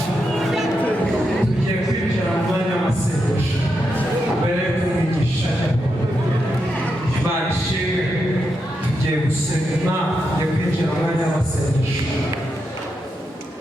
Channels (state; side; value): normal; both; correlation 0.85